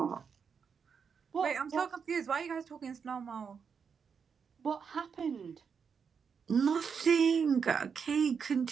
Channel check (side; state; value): left; quieter; 6.3 dB